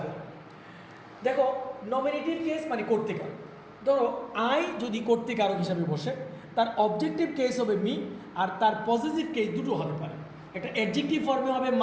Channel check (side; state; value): both; identical; correlation 1.00